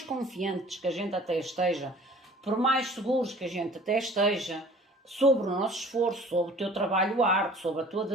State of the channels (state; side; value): normal; both; correlation 0.49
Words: confiantes que a gente até esteja, por mais seguros que a gente até esteja, sobre o nosso esforço, sobre o teu trabalho árduo, sobre a tua